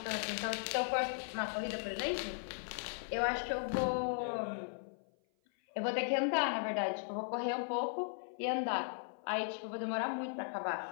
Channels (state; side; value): silent; right; 53 dB below the other